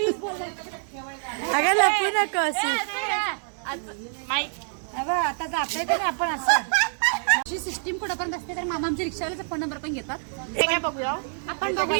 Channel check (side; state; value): left; silent; 61 dB below the other